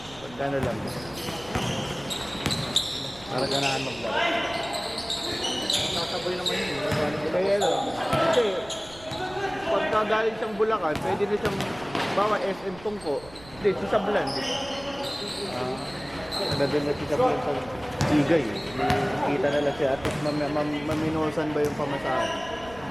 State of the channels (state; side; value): noise; right; rumble, 20 dB below the sound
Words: Pagkano lang. Para ganahan maglaro. Nakasabay naman yun. Kaya ano, kasi pagka galing siyang Bulacan, pwede na siyang bawa SM Tungko. Hindi, si Sablan. Nandun na si Sablan sa Igay. Kita na lang siya at maminosan ba yung pamasahe.